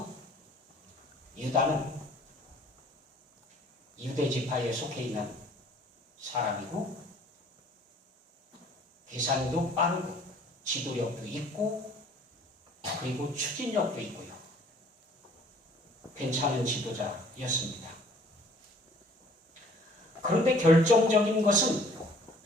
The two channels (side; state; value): both; normal; correlation 0.55